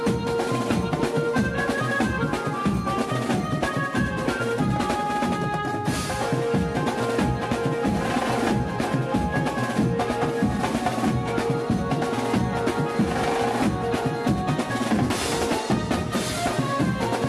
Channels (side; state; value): both; identical; correlation 1.00